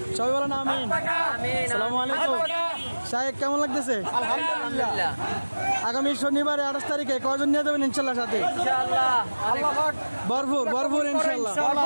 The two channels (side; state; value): both; inverted; correlation -1.00